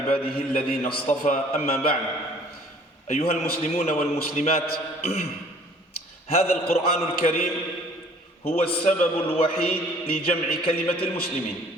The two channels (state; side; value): normal; both; correlation 0.54